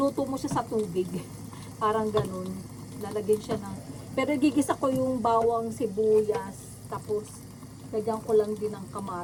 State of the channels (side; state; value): both; identical; correlation 1.00